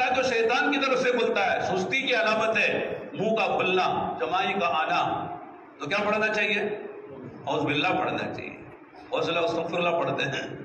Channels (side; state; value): both; identical; correlation 1.00